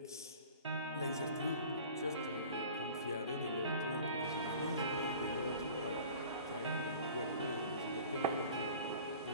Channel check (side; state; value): both; inverted; correlation -0.41